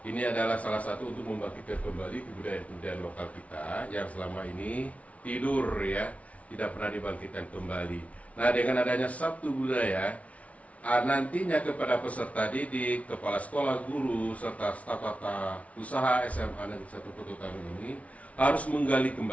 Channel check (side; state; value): right; late; 0.066 ms